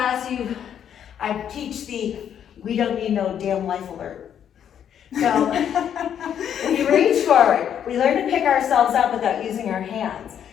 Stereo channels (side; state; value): right; quieter; 9.1 dB